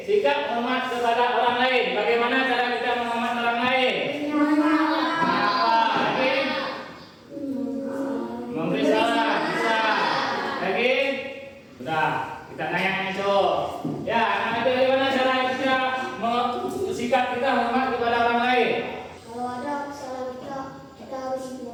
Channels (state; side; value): identical; both; correlation 1.00